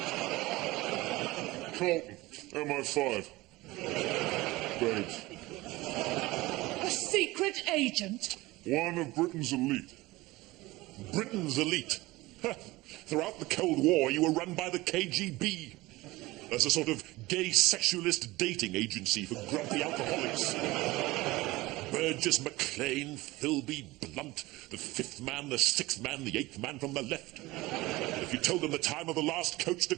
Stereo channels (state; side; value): quieter; left; 20.0 dB